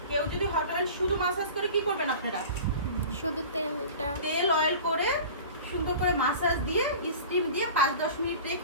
কেউ যদি হট অয়েল শুধু মাসাজ করে, কি করবেন আপনারা, শুধু তেল অয়েল করে সুন্দর করে মাসাজ দিয়ে স্টিম দিয়ে 5-10 মিনিট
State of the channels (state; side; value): inverted; both; correlation -0.39